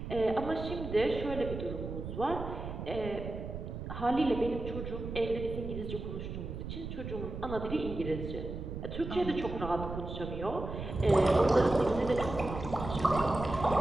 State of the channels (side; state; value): right; noise; rumble, 7 dB below the sound